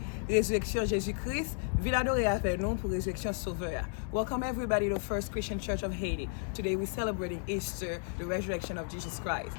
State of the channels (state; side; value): silent; right; 56 dB below the other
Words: la résurrection de Jésus-Christ. Ville adorée avec nous pour la résurrection sauveur. Welcome everybody to First Christian Church of Haiti. Today we're celebrating Easter, the resurrection of Jesus Christ.